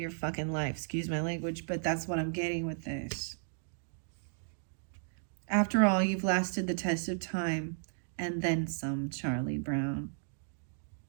fucking life. Excuse my language, but that's what I'm getting with this. After all, you've lasted the test of time and then some, Charlie Brown.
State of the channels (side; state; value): left; silent; digital silence